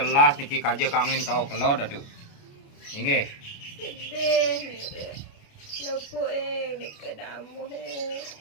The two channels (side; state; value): right; late; 29 ms